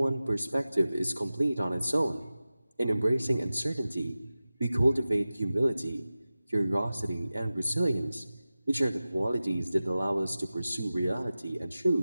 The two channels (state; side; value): inverted; both; correlation -0.96